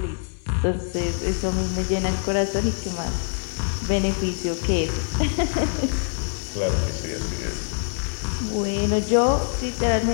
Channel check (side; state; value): right; silent; 62 dB below the other